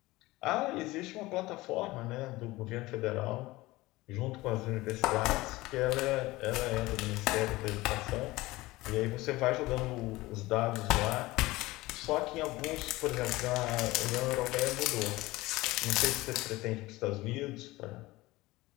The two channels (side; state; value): right; quieter; 19.7 dB